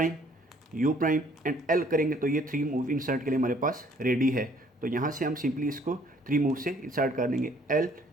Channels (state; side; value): normal; both; correlation 0.61